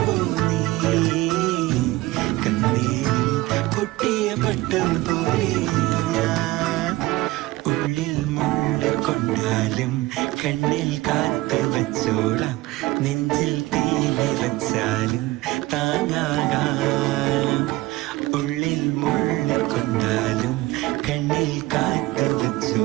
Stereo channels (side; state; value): left; quieter; 19.1 dB